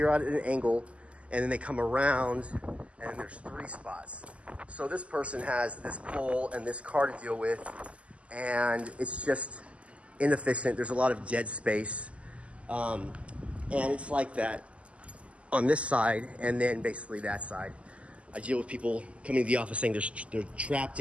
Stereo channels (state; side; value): late; left; 0.061 ms